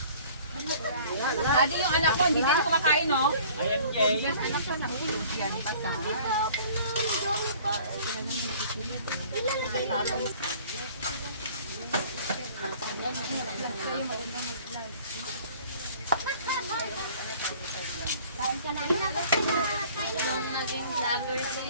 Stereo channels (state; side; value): inverted; both; correlation -0.50